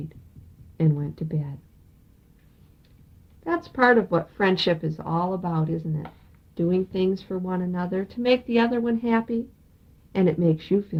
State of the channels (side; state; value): both; identical; correlation 1.00